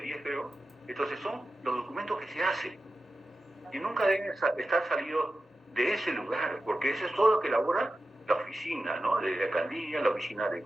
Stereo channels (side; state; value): both; normal; correlation 0.92